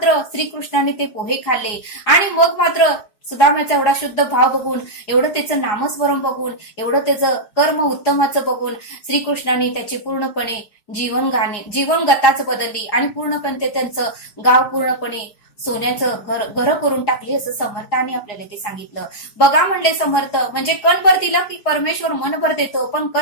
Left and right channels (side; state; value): right; late; 4.8 ms